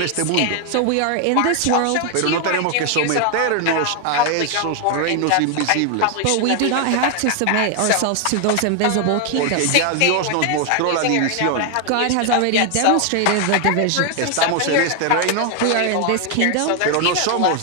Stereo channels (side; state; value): both; different; correlation 0.00